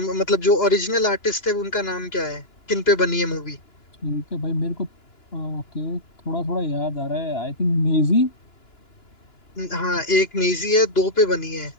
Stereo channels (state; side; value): late; right; 2.9 ms